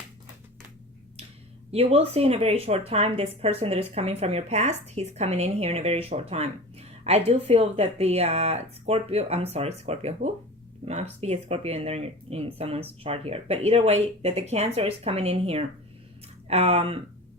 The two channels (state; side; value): normal; both; correlation 0.34